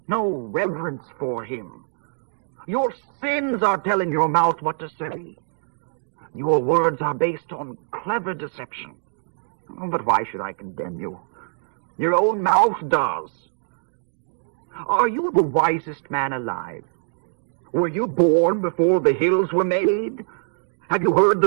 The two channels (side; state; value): left; silent; digital silence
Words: no reverence for him? Your sins are telling your mouth what to say. Your words are based on clever deception. But why should I condemn you? Your own mouth does. Are you the wisest man alive? Were you born before the hills were made? Have you heard